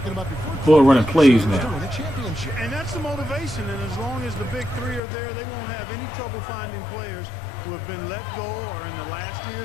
Boy, running plays now. And that's the motivation. And as long as the big three are there, they won't have any trouble finding players who have been let go or in the last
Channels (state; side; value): drops out; right; at 5.0 s